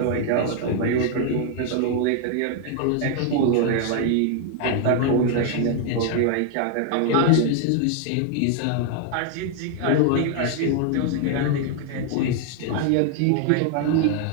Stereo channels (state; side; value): different; both; correlation 0.00